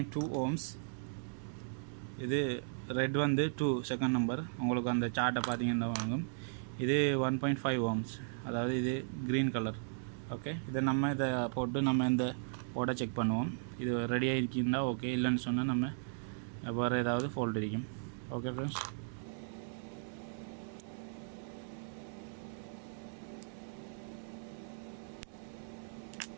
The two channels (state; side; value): silent; left; digital silence